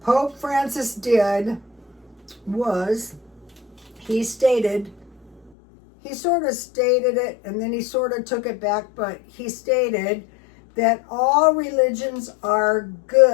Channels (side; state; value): right; drops out; at 5.5 s